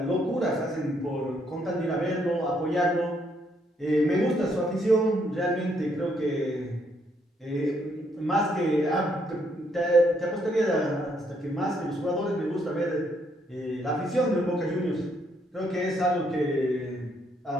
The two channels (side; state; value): both; normal; correlation 0.72